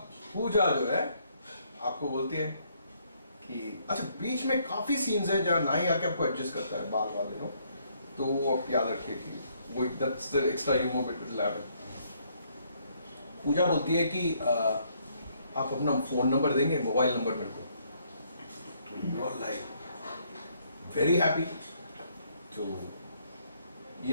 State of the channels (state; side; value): inverted; both; correlation -0.69